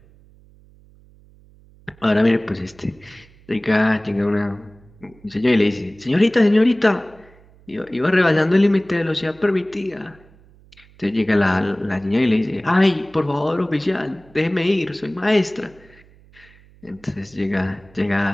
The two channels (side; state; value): right; noise; hum, 27 dB below the sound